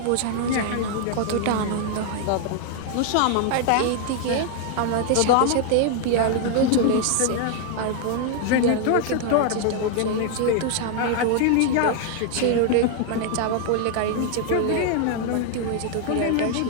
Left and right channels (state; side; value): different; both; correlation 0.00